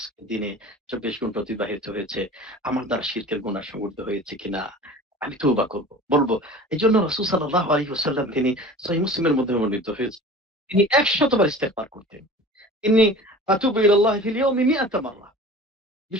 দিনে ২৪ ঘন্টা অতিবাহিত হয়েছে, আমার দ্বারা শিরকের গুনাহ সংঘটিত হয়েছে কিনা? আমি তওবা করব, বলবো। এই জন্য রাসূল সাল্লাল্লাহু আলাইহি ওয়াসাল্লাম তিনি সহিহ মুসলিমের মধ্যে বর্ণিত হয়েছে, তিনি ১০০ বার ইস্তেগফার করতেন। ইন্নী আতুবু ইলাল্লাহি ফিল ইয়াউমি ১০০ মাররা।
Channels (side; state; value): both; normal; correlation 0.40